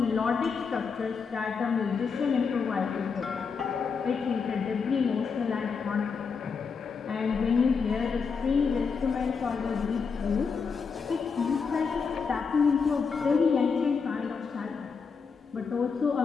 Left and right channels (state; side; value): quieter; right; 5.5 dB